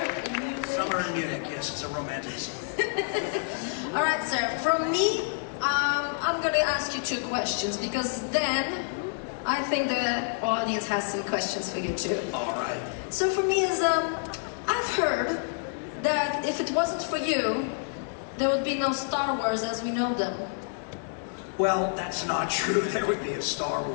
in Munich. Summer in Munich, yes, it's a romantic song. All right, sir. From me, I'm going to ask you 2 questions because then I think the audience has some questions for you too. All right. So for me is, I've heard that if it wasn't for you, there would be no Star Wars as we know them. Well, that's not true. There would be a Star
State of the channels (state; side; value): silent; right; 59 dB below the other